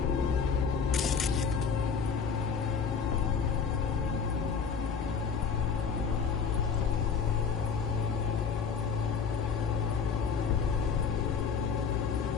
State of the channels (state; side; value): quieter; right; 6.0 dB